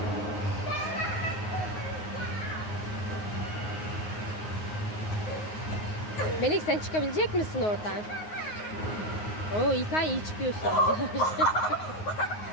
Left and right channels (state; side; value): late; right; 9.5 ms